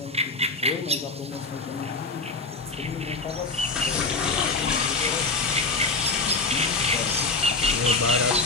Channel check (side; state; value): right; quieter; 3.7 dB